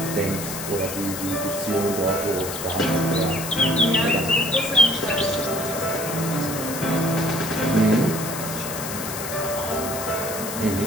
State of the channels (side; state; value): left; noise; hiss, 7 dB below the sound